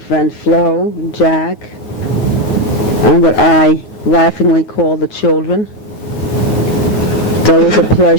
Flo and Jack, and what I laughingly call the children. It's always a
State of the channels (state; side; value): late; right; 9.4 ms